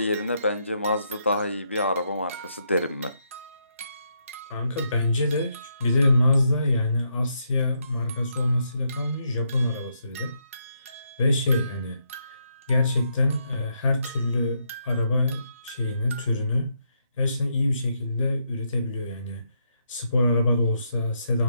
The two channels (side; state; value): both; inverted; correlation -0.78